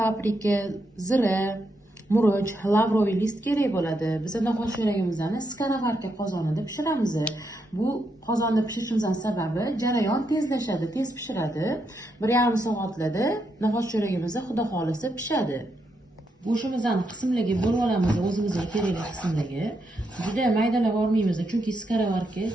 zira, murch, lavroviy list kerak bo'ladi. Biz no'xat sho'ragimizni skaravarka qozonida pishiramiz. Bu qozonda pishirishimizning sababi jarayon tezlashadi, tez pishiradi. 1,5 soatlarda no'xat sho'ragimiz xudo xolisa pishadi. Go'shtimizni qismlarga bo'lib olamiz, o'zimizga kerakli qismlarga. Juda maydalab olmaymiz, chunki skaravarka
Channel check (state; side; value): normal; both; correlation 0.81